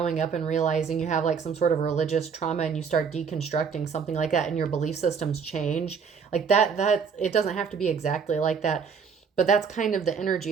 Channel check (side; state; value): left; quieter; 6.2 dB